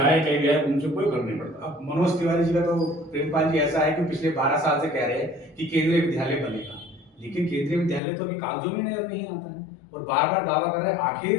कहीं भी आए, उनसे कोई फर्क नहीं पड़ता। अब मनोज तिवारी जी का तो प्रेमपाल जी ऐसा है कि पिछले 12 साल से कह रहे हैं कि केंद्रीय विद्यालय बनेगा, लेकिन केंद्रीय विद्यालय तो अभी कागजों में नजर नहीं आता है और बार बार दावा कर रहे हैं। आखिर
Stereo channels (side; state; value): right; drops out; at 8.0 s